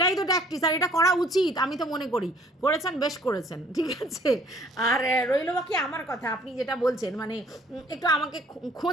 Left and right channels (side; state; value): both; normal; correlation 0.57